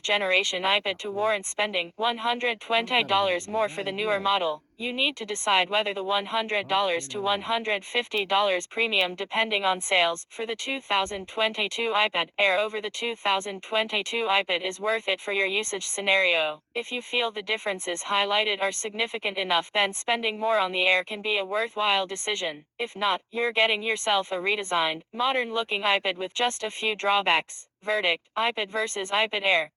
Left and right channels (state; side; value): identical; both; correlation 1.00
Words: generation iPad to warrant spending $120 more for the newer model. You need to decide whether the $100 to $150 premium, depending on sales, for the 2022 iPad Air over the 2022 iPad is worth it for your usage scenario. If you feel the differences highlighted are significant enough, then spending more on the Air can be a worthwhile decision. If not, you're getting yourself a redesigned, modern-looking iPad with just a few drawbacks. Verdict: iPad versus iPad Air.